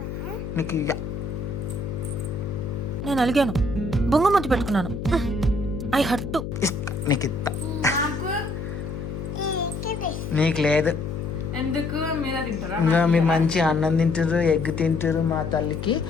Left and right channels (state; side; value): noise; left; hum, 6 dB below the sound